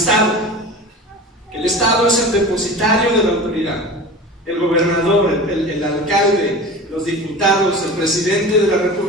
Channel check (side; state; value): both; normal; correlation 0.34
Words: El Estado es el depositario de la autoridad. El gobernador, el alcalde, los diputados, el presidente de la